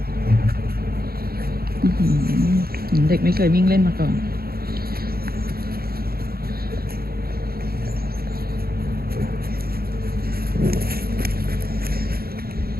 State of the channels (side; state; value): left; late; 0.44 ms